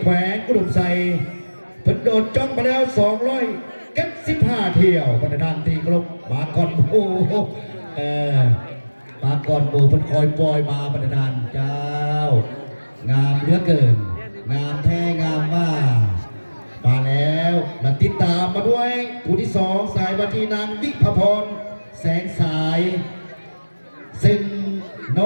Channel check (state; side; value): inverted; both; correlation -1.00